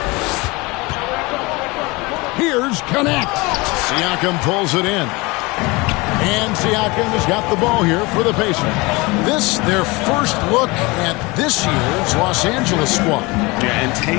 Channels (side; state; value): right; quieter; 24.4 dB